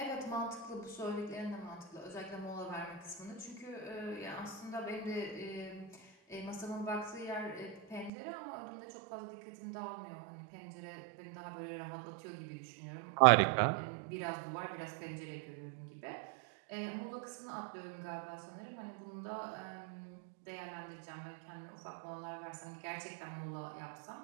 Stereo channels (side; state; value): left; drops out; at 8.1 s